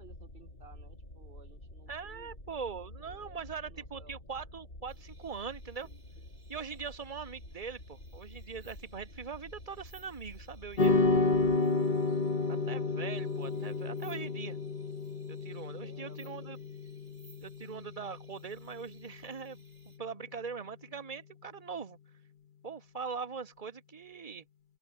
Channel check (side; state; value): right; late; 2.3 ms